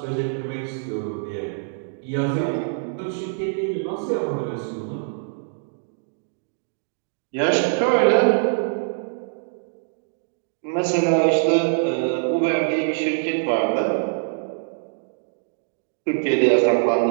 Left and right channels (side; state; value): left; silent; digital silence